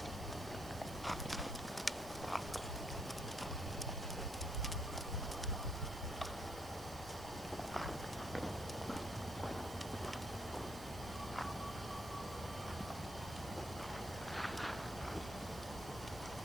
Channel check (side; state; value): right; noise; hiss, 14 dB below the sound